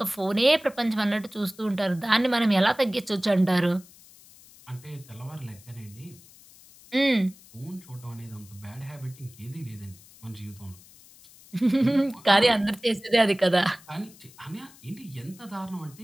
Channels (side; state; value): left; noise; hiss, 23 dB below the sound